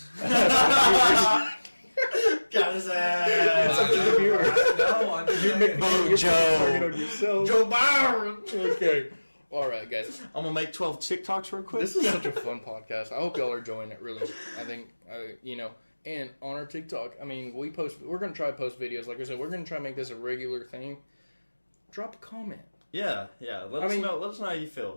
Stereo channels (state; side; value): inverted; both; correlation -1.00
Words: Got his It's ass. up to the viewer. No, I didn't. Vote Joe. Target on yourself. Joe Byron. Okay. All right, guys. I'm gonna make 12 TikToks real quick. This is such a fun podcast. I hope y'all are enjoying it. Really, I think And on our TikTok, I mean, we're gonna try to post videos. Like I said, we're gonna try to make this a regular thing. Drop a comment. Yeah. Let us know how you